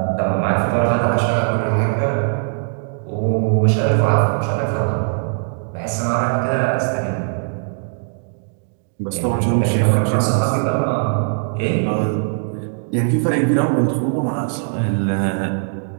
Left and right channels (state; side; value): silent; left; digital silence